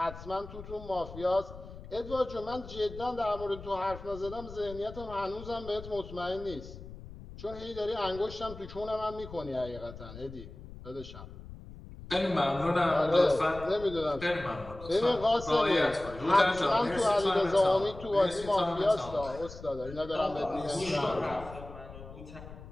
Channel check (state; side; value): noise; left; rumble, 14 dB below the sound